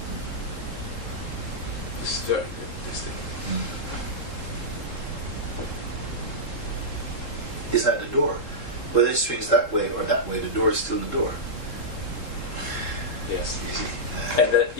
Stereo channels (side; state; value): right; late; 3.7 ms